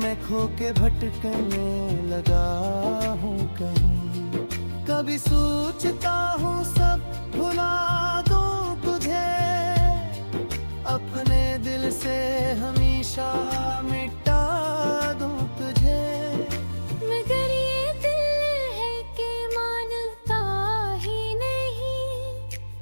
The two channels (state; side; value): inverted; both; correlation -1.00